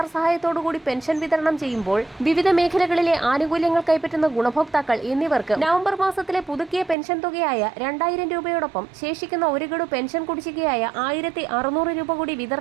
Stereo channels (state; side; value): drops out; left; at 7.0 s